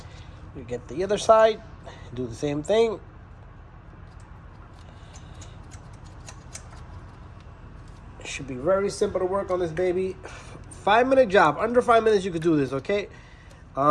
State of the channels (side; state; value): both; identical; correlation 1.00